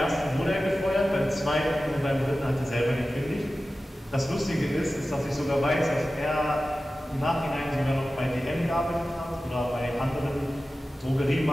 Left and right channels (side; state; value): both; normal; correlation 0.95